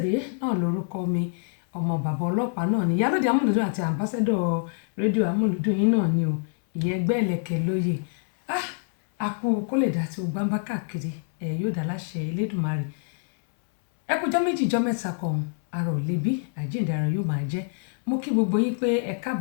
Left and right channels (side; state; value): right; silent; 61 dB below the other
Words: náà lórúkọ mi ọmọ bàbá ọlọ́pàá náà ni Ìyálóde Amúlùdún àti àmbásẹ́dọ̀ rédíò Amúlùdún yín náà ni o ìyẹn ẹgbẹ́ ẹlẹ́kẹ̀ lóye. Àkú kó lè dá tí o gbáǹbá káàkiri yóò dá láṣẹ Elédùmarè. Ẹ kújọ́ méjì jọ́ mẹ́ta kan ara ò lebi àjíǹde ara yóò máa jẹ́. Mo kí gbogbo yín pé ẹ